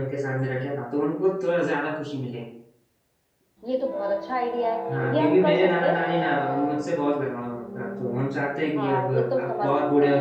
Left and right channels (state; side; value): identical; both; correlation 1.00